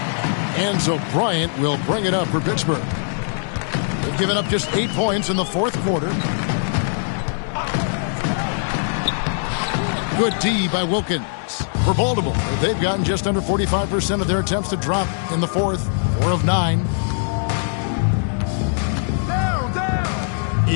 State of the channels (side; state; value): right; silent; digital silence